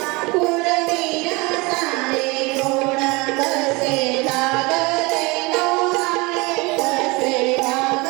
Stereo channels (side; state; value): left; quieter; 25.4 dB